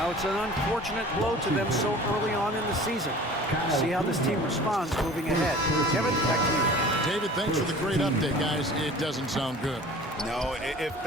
it's an unfortunate blow to them so early on in the season. We'll see how this team responds moving ahead. Kevin, back to you. David, thanks for the great update, guys. It doesn't sound good. No, if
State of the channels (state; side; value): normal; both; correlation 0.43